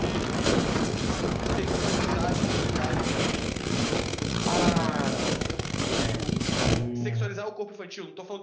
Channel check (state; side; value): identical; both; correlation 1.00